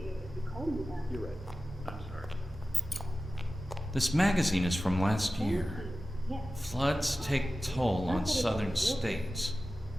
it if you called me that. You're right. I'm sorry. This magazine is from last year. Yes. Floods take toll on southern states.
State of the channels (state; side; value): normal; both; correlation 0.95